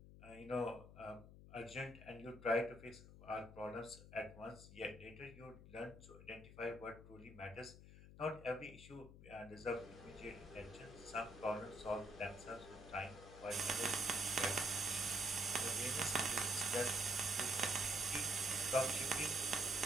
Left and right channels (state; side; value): noise; left; hum, 16 dB below the sound